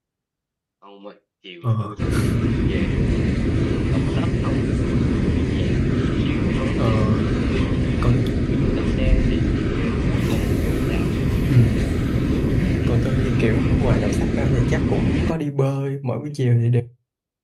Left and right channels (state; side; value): identical; both; correlation 1.00